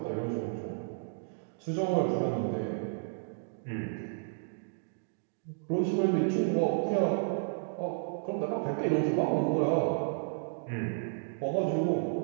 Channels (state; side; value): silent; left; digital silence